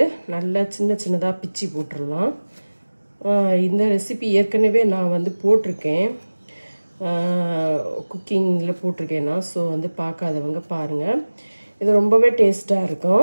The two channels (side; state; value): both; inverted; correlation -1.00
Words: நல்லா சின்னதாக பிச்சு போட்டுடலாம். இந்த ரெசிபி ஏற்கனவே நான் வந்து போட்டிருக்கேன், குக்கிங்கில் போட்டிருக்கேன் நான். ஸோ வந்து பார்க்காதவங்க பாருங்கள். இது ரொம்பவே டேஸ்ட்டாக